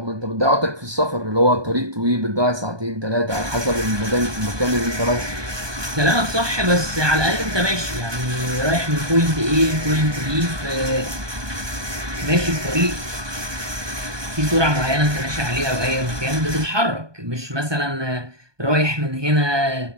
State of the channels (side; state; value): left; late; 1.2 ms